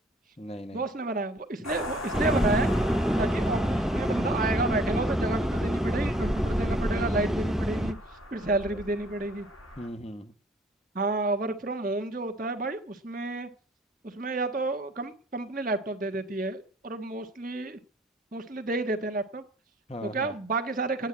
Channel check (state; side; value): normal; both; correlation 0.56